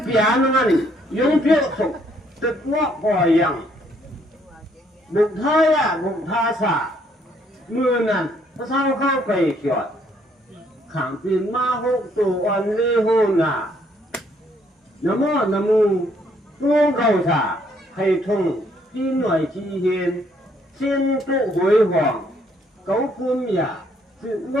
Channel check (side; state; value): both; normal; correlation 0.68